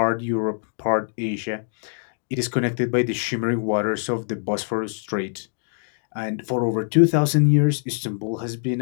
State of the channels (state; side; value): silent; right; digital silence